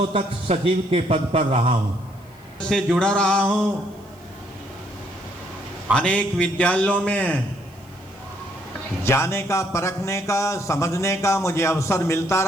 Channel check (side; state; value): left; noise; hiss, 30 dB below the sound